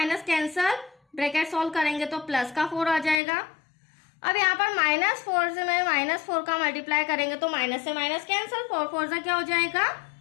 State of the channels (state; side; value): drops out; right; at 3.2 s